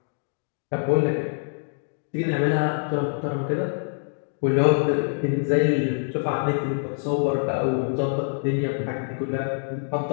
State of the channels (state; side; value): silent; right; digital silence